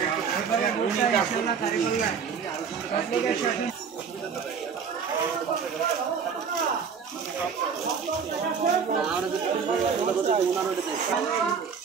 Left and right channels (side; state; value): left; quieter; 6.4 dB